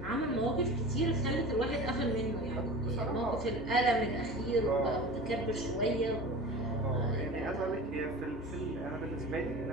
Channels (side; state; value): both; normal; correlation 0.36